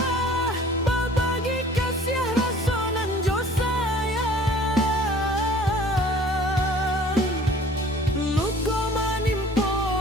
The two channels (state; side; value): normal; both; correlation 0.50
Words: babagi kasih rasonan jo sayang, luko manimpo